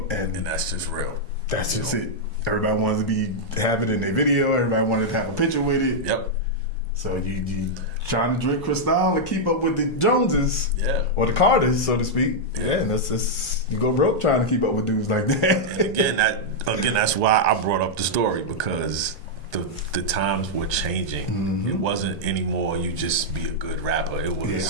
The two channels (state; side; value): noise; left; rumble, 22 dB below the sound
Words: And that's just real. That's just it. Everybody wanted to have it in their video. Everybody wanted to have a picture with it. Yep. So you trying to drink Cristal and keep up with the Joneses, or the Carters, so to speak. Yeah, and that's you go broke trying to keep up with dudes like that. And again, that's why I brought up the story, because the times were changing. It wasn't anymore you just be a good rapper. It